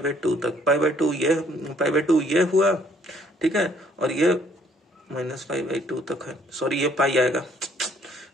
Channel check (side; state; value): both; normal; correlation 0.63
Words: तक, π/2 ये हुआ। ठीक है, और ये -π/2 तक है, सॉरी ये पाई आएगा,